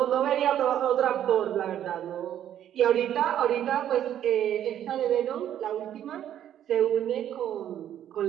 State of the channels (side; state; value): left; quieter; 10.7 dB